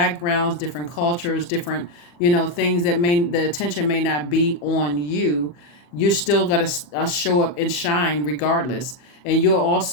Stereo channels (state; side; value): late; right; 40 ms